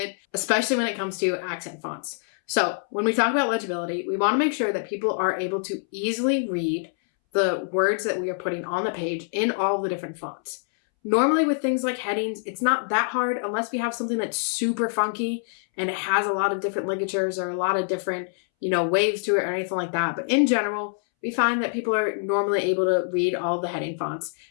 especially when it comes to accent fonts. So when we talk about legibility, we want to make sure that people are able to easily read the words that we are putting on the page in all the different fonts. Normally with things like headings, it's not that hard unless we have something that's super funky and it has a lot of different ligatures or a lot of different, waves to it or anything like that. But in general, we find that people are normally able to read all the heading fonts.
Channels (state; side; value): silent; right; 62 dB below the other